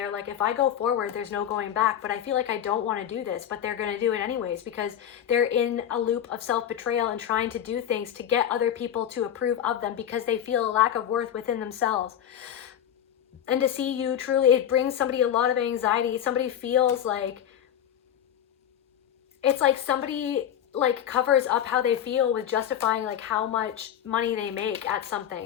like, if I go forward, there's no going back, but I feel like I don't want to do this, but they're going to do it anyways, because they're in a loop of self-betrayal and trying to do things to get other people to approve of them, because they feel a lack of worth within themselves. And to see you truly, it brings somebody a lot of anxiety. Somebody feels like, it's like somebody like covers up how they feel with justifying like how much money they make at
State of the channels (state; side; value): quieter; right; 10.0 dB